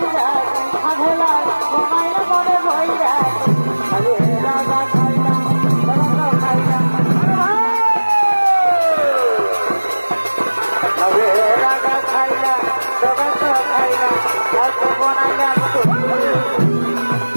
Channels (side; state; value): both; inverted; correlation -1.00